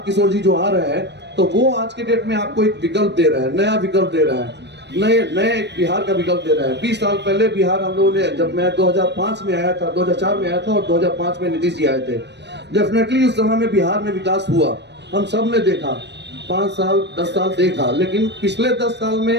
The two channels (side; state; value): left; late; 0.50 ms